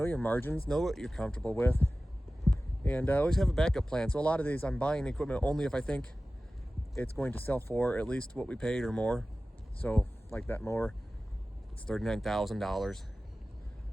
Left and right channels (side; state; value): both; normal; correlation 0.96